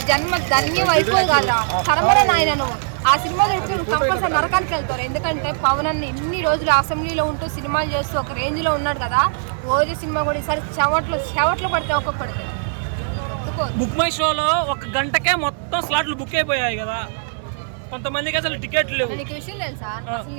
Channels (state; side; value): silent; left; digital silence